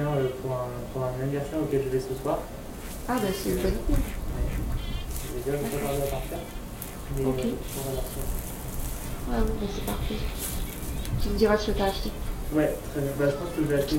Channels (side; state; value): both; identical; correlation 1.00